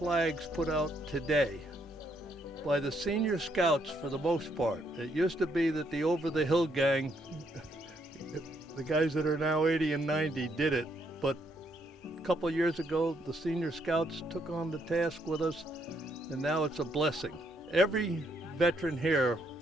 put out today by the senior scouts for the most part. It used to be that the Over the Hill gang, the guys that are now 80 and 90, did it, but a couple of years ago the senior scouts took on the task with us, and now it's a blessing. Every veteran here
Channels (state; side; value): normal; both; correlation 0.73